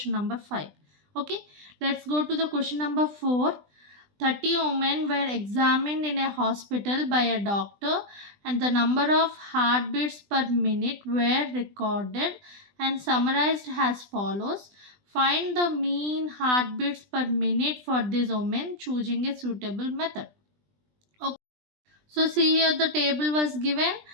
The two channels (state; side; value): late; left; 20 ms